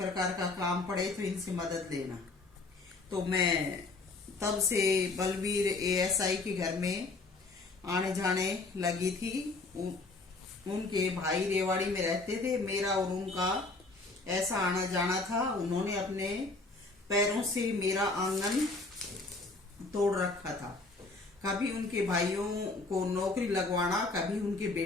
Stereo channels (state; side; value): quieter; right; 3.5 dB